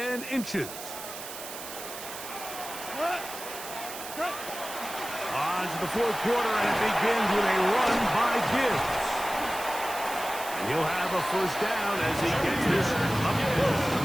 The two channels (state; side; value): noise; right; hiss, 10 dB below the sound